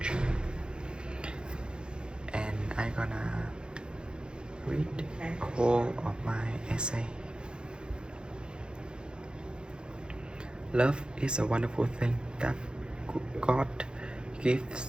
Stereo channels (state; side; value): late; left; 0.049 ms